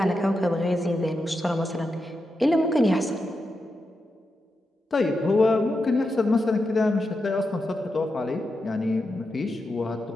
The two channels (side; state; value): both; normal; correlation 0.87